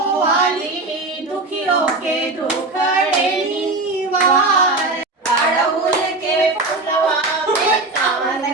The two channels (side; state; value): left; quieter; 3.1 dB